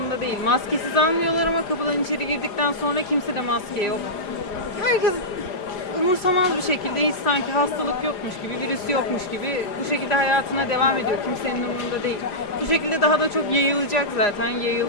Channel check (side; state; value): right; late; 4.9 ms